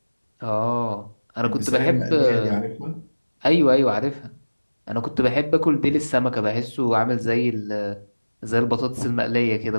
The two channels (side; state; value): both; inverted; correlation -1.00